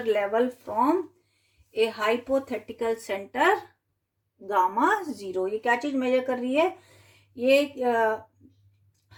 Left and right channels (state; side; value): identical; both; correlation 1.00